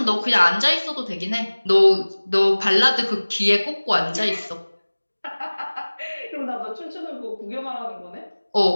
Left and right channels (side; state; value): both; inverted; correlation -1.00